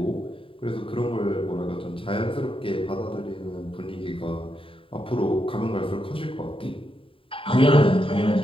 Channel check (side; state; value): right; late; 0.26 ms